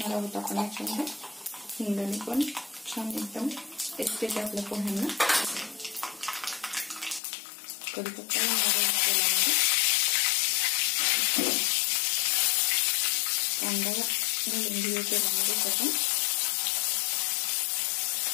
आहोत आपण याच्यामध्ये। हिंगाने पण छान एकदम टेस्ट येते आपल्या पोह्यांना। कढीपत्ता घालणार आहोत तेलामध्ये। कांदा घालून घेऊया तेलामध्ये आपण।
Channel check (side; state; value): right; drops out; at 7.2 s